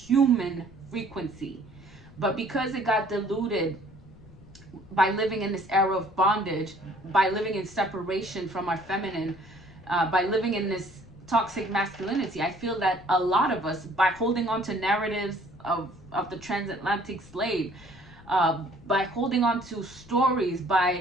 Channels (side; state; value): left; noise; rumble, 22 dB below the sound